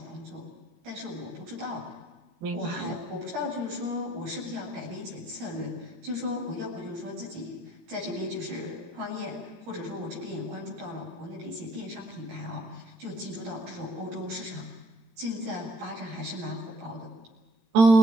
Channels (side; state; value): left; late; 17 ms